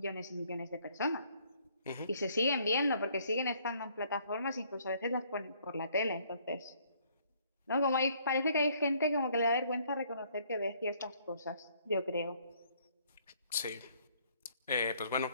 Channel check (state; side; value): inverted; both; correlation -0.64